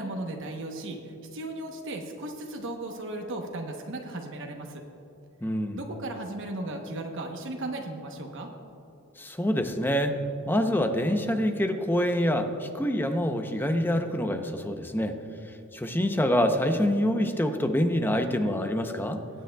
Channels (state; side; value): normal; both; correlation 0.73